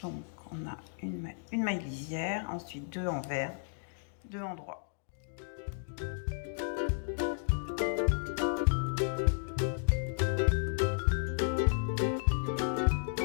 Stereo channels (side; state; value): right; silent; digital silence